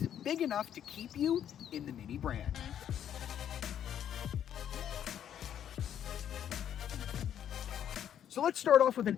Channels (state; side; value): quieter; right; 9.8 dB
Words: big enough to keep you in the Mini brand. So let's start off with